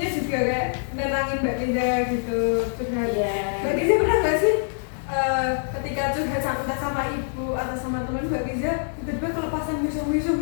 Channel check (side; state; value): right; silent; digital silence